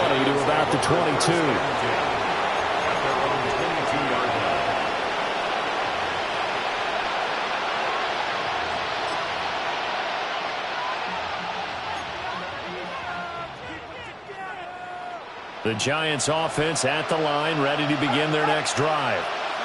to about the 22. The Giants offense at the line, ready to begin their next drive.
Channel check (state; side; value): identical; both; correlation 1.00